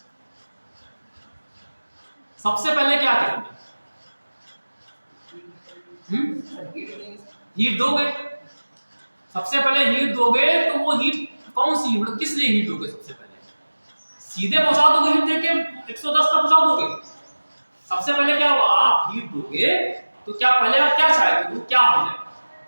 सबसे पहले क्या करेंगे, हीट दोगे। सबसे पहले हीट दोगे, तो वो हीट कौन सी, मतलब किस लिए हीट दोगे? सबसे पहले सीधे पहुंचा दोगे हीट देके 110 तक पहुंचा दोगे? सबसे पहले क्या होगा, आप हीट दोगे तो क्या पहले आप क्या चाहेंगे, वो क्या हो जाएगा?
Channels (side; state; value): both; inverted; correlation -1.00